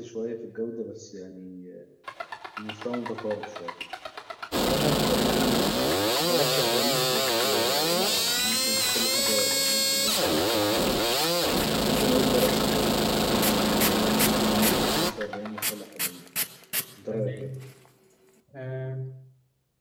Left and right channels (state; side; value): identical; both; correlation 1.00